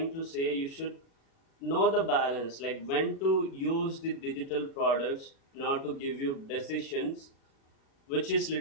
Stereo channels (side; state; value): right; late; 36 ms